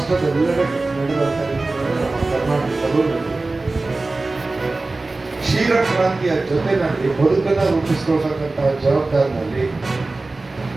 ನಡೆದಂತ ನಮ್ಮ ಕರ್ನಾಟಕದಲ್ಲೂ ನಡೆದಿದೆ. ಕ್ಷೀರ ಕ್ರಾಂತಿಯ ಜೊತೆನಲ್ಲಿ ಬದುಕನ್ನು ರೂಪಿಸಿಕೊಳ್ತಕ್ಕಂತಹ ಜವಾಬ್ದಾರಿನಲ್ಲಿ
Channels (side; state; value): left; quieter; 3.3 dB